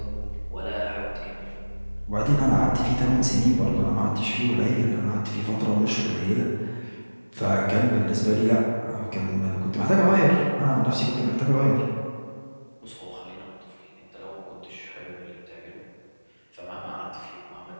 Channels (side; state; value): both; inverted; correlation -1.00